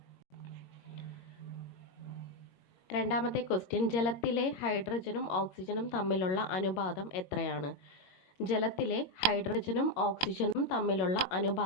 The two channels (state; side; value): late; right; 21 ms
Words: രണ്ടാമത്തെ ക്വസ്റ്റ്യൻ, ജലത്തിലെ ഹൈഡ്രജനും ഓക്സിജനും തമ്മിലുള്ള അനുപാതം എത്രയാണ്? ജലത്തിലെ ഹൈഡ്രജനും ഓക്സിജനും തമ്മിലുള്ള